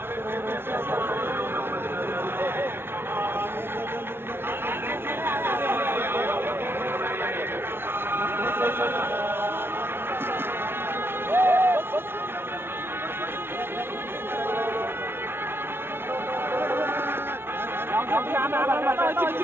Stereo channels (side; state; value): left; late; 0.11 ms